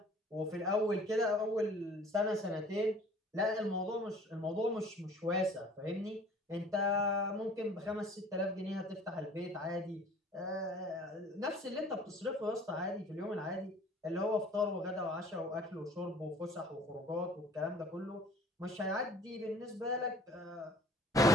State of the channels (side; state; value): both; normal; correlation 0.50